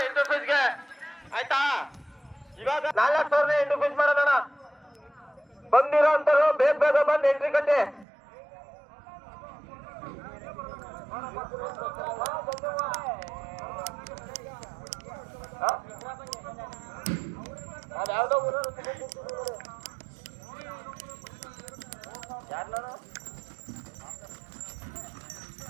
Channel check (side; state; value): left; drops out; at 8.1 s